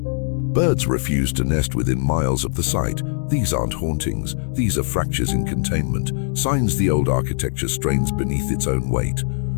Birds refuse to nest within miles of the site. These aren't hauntings. These are fractures in containment, signs the old architecture strains beneath its own weight.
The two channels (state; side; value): silent; right; digital silence